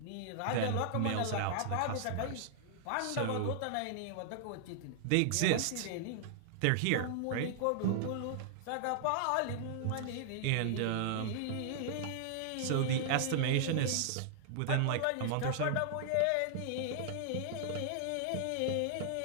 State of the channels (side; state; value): both; different; correlation -0.01